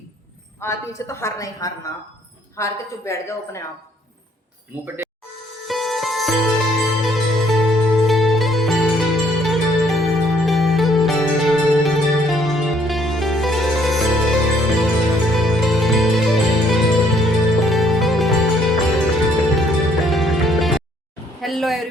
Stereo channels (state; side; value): normal; both; correlation 0.64